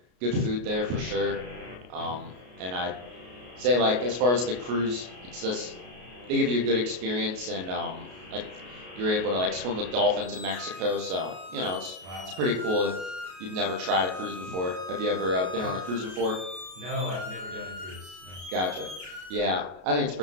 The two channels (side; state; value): left; late; 33 ms